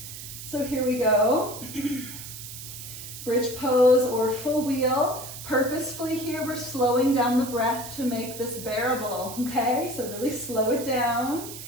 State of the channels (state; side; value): noise; right; hiss, 11 dB below the sound